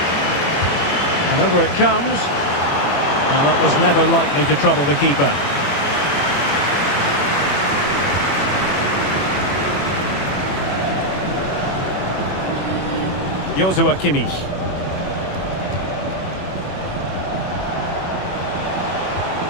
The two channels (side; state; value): right; late; 21 ms